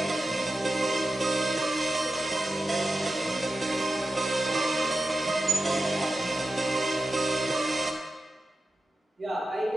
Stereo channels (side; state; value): both; normal; correlation 0.91